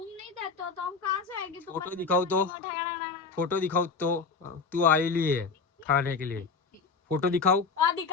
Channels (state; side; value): quieter; right; 4.9 dB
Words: नहीं देते हो तो हम कहाँ से आएंगे? फोटो दिखाओ तो। फोटो दिखाओ तो। तू आई ली है खाने के लिए। फोटो दिखाओ।